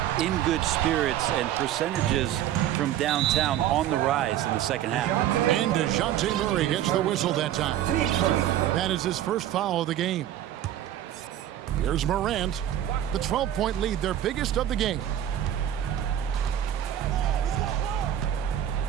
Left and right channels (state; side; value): quieter; left; 11.6 dB